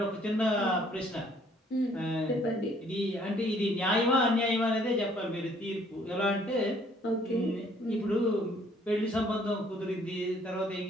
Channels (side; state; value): both; normal; correlation 0.62